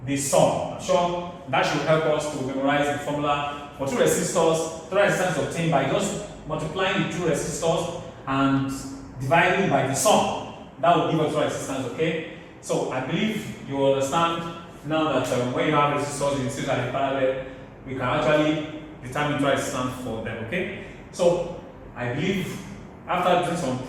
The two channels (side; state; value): both; identical; correlation 1.00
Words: the sum. I'm sure that should help us to memorize the formula. For two resistors, total resistance is obtained by just multiplying the two resistors and dividing by the sum. That will give us total resistance, okay? So I believe you understand now that when you have resistors in series and in parallel, we can actually determine total resistance for them, okay? So I believe after doing some